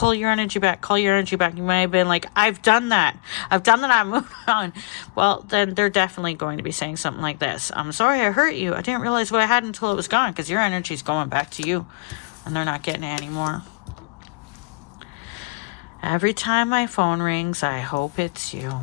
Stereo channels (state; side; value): quieter; right; 30.5 dB